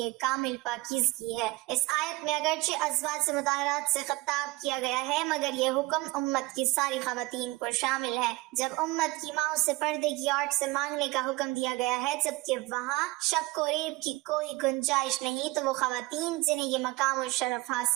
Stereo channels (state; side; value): quieter; left; 21.7 dB